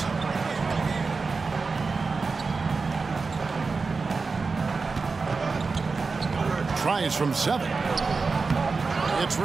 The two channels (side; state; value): left; quieter; 4.4 dB